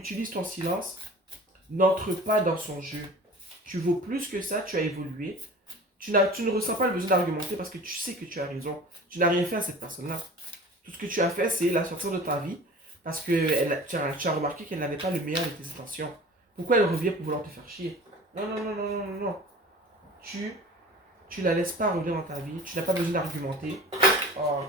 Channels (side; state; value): both; normal; correlation 0.41